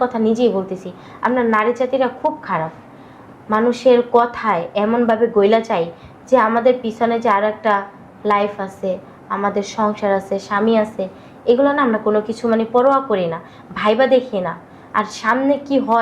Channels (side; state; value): both; identical; correlation 1.00